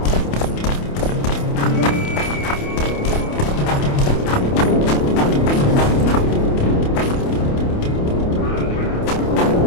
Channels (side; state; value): right; late; 28 ms